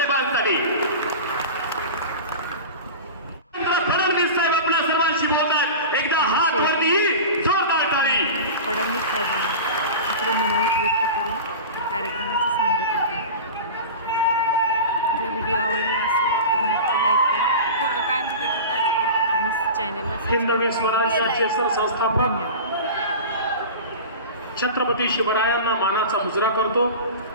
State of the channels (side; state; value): both; inverted; correlation -0.31